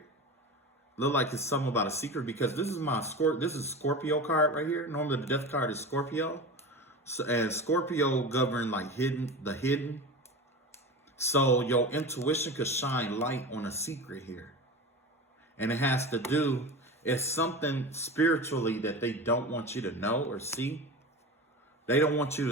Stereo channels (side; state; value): both; normal; correlation 0.29